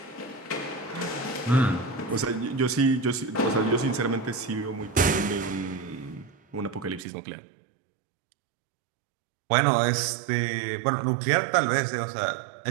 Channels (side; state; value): left; drops out; at 7.1 s